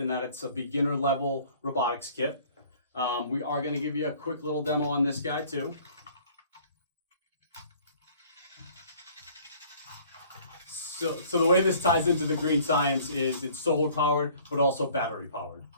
that it's a beginner level robotics kit. We are going to give you a quick little demo on this guy too. So the way this ties into the Green Science is it's solar powered, but also battery powered.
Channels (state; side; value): inverted; both; correlation -0.53